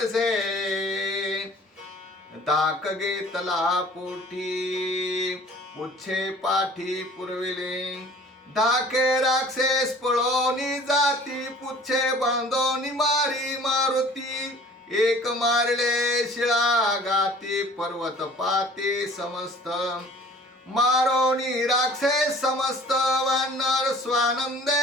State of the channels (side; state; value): both; normal; correlation 0.49